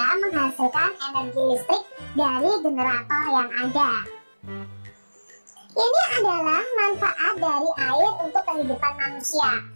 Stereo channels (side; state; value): both; inverted; correlation -1.00